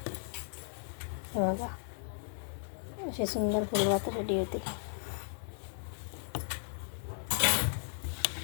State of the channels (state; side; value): silent; right; digital silence